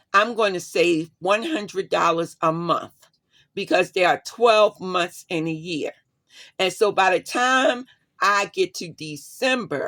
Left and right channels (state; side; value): identical; both; correlation 1.00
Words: I'm going to save $100 a month because there are 12 months in a year. And so by the time I get to